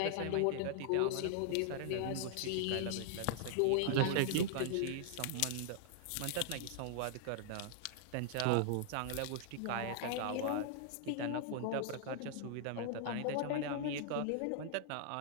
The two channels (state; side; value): different; both; correlation -0.01